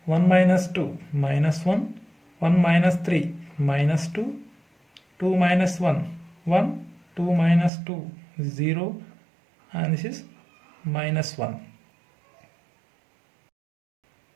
1 minus 2 minus 1, 1 minus 3 minus 2, 2 minus 1 1, 2 minus 2 0 and this is minus 1.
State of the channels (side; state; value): left; drops out; at 7.7 s